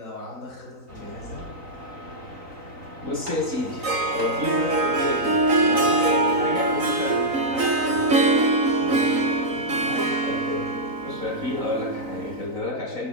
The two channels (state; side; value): late; left; 3.9 ms